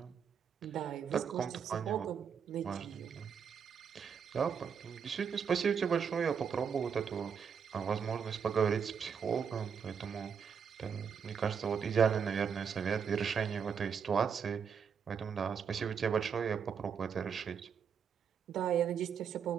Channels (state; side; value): quieter; left; 7.0 dB